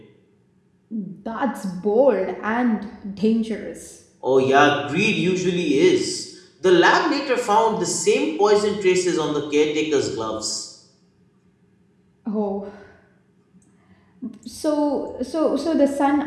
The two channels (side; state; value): both; identical; correlation 1.00